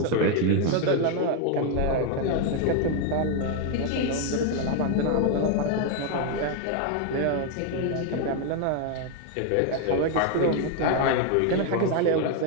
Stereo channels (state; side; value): different; both; correlation 0.01